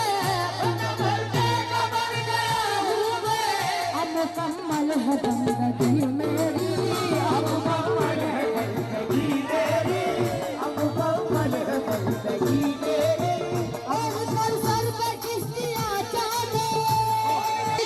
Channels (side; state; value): both; identical; correlation 1.00